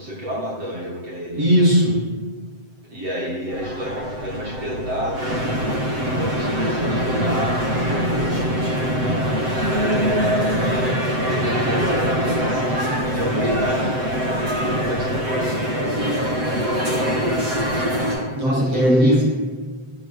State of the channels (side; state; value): left; late; 7.8 ms